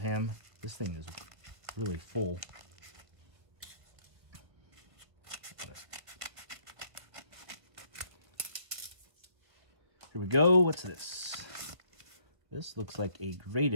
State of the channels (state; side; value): late; left; 1.6 ms